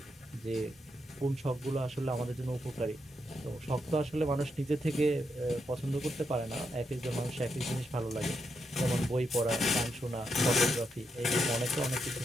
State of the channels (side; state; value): both; normal; correlation 0.81